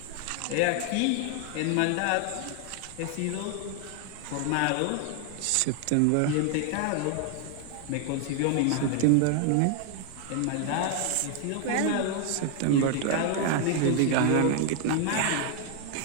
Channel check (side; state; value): both; different; correlation 0.00